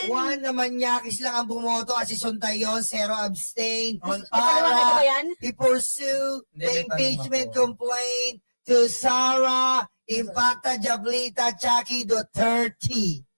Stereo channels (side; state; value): both; inverted; correlation -1.00